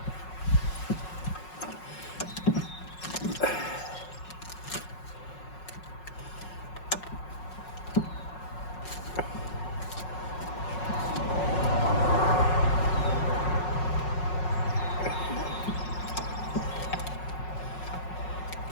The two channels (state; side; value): late; right; 5.5 ms